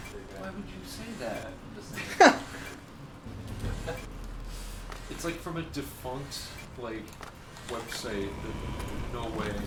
Why would you say that? It's like from a defunct like website. No way.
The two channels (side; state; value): both; identical; correlation 1.00